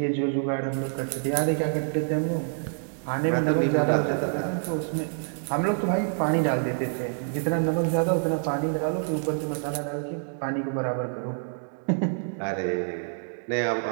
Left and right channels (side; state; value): left; silent; 60 dB below the other